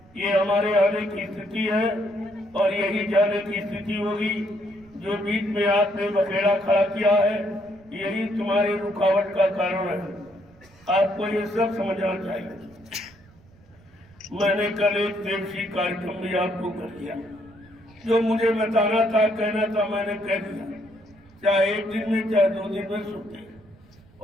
ये हमारे आने की स्थिति है और यही जाने की स्थिति होगी। जो बीच में आपने बखेड़ा खड़ा किया है, यही तुम्हारी रुकावट का कारण है। आपको ये सब समझना चाहिए। मैंने कल एक देवसी कार्यक्रम भी आपको कर दिया। जो मुझे बताना था, कहना था, मैंने कह दिया। चाहे 1 दिन में, चाहे 2 दिन में सुनते,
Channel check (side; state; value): right; noise; rumble, 27 dB below the sound